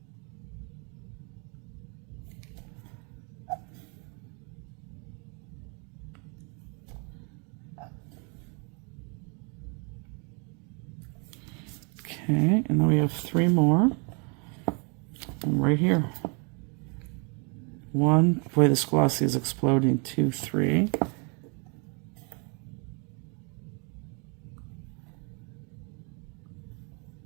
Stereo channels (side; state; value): left; quieter; 34.9 dB